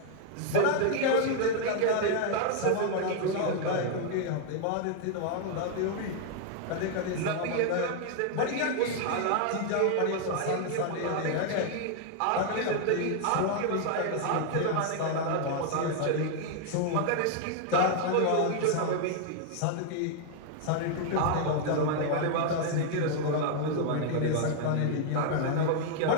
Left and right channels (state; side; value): different; both; correlation 0.00